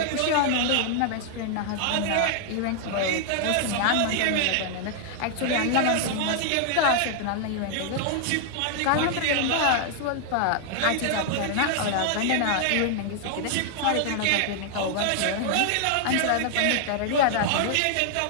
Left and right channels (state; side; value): different; both; correlation 0.00